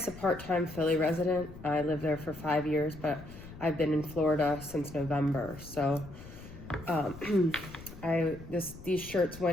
a part-time Philly resident. I lived there for 5 years, but I've been in Florida since November. So these shirts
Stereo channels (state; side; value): noise; left; rumble, 15 dB below the sound